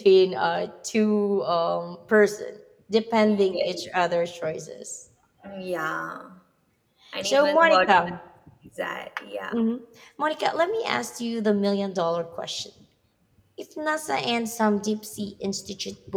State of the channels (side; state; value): both; identical; correlation 1.00